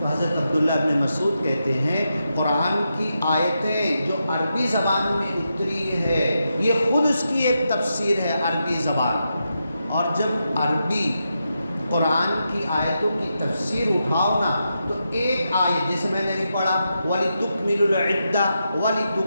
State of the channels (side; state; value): both; inverted; correlation -0.86